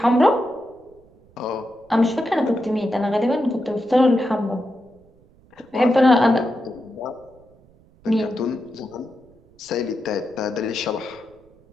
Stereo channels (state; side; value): noise; right; rumble, 29 dB below the sound